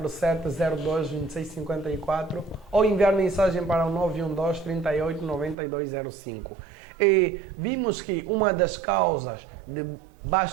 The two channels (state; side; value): drops out; left; at 5.6 s